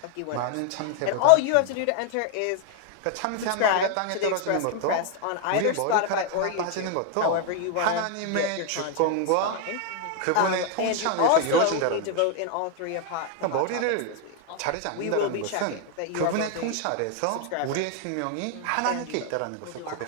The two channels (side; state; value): both; different; correlation 0.00